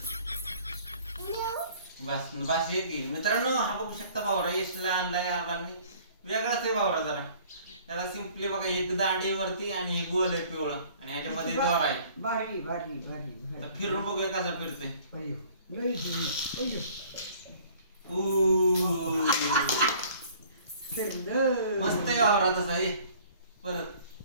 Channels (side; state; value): both; inverted; correlation -0.53